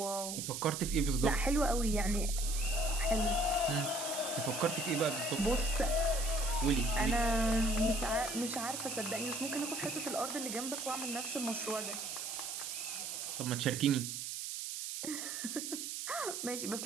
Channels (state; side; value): noise; right; hiss, 5 dB below the sound